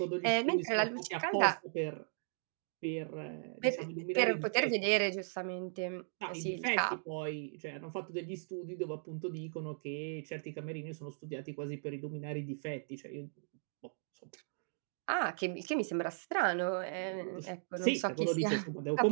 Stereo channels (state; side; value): silent; left; digital silence